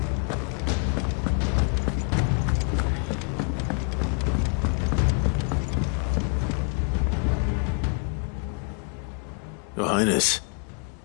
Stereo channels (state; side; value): quieter; right; 37.0 dB